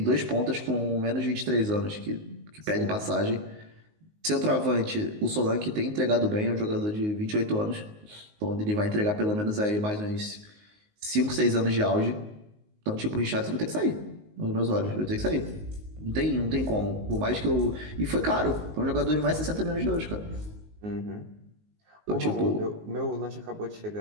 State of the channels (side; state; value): left; late; 19 ms